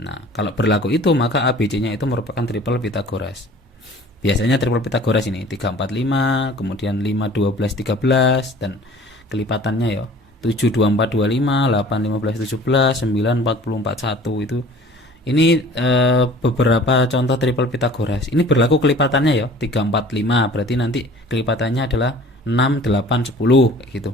kalau berlaku itu maka A, B, C-nya itu merupakan triple Pitagoras. Biasanya triple Pitagoras ini 3, 4, 5, kemudian 5, 12, 13 dan kelipatannya ya 7, 2, 4, 25, 8, 15, 17, 9, 40, 41 itu Ini beberapa contoh triple Pitagoras. Ini berlaku kelipatannya ya, 3, 4, 5. Berarti nanti kelipatannya adalah 6, 8, 10 kayak gitu.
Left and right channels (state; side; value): normal; both; correlation 0.48